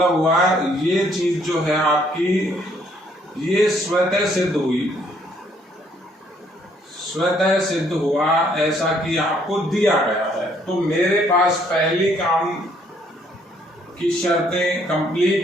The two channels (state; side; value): normal; both; correlation 0.66